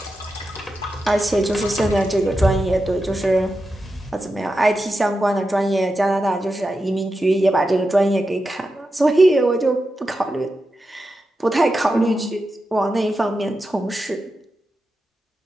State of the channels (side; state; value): both; normal; correlation 0.90